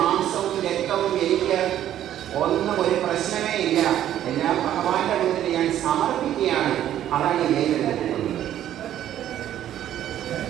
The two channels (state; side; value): quieter; left; 11.6 dB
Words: രക്തവും എനിക്ക് ഒന്നും ഒരു പ്രശ്നമേ ഇല്ല, എല്ലാം ഭഗവാന്റെ മുന്നിൽ ഞാൻ സമർപ്പിക്കുകയാണ്. അതാണ് വേരെടുത്ത് കുത്തുന്നത്.